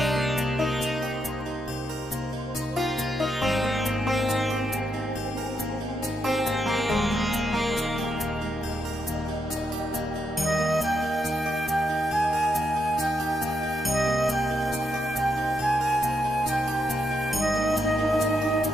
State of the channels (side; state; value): both; normal; correlation 0.80